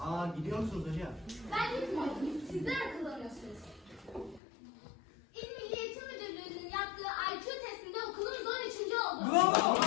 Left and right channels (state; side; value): drops out; right; at 4.4 s